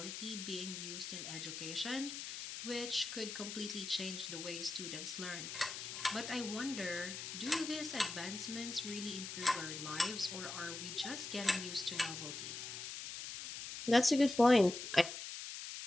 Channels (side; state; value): left; noise; hiss, 7 dB below the sound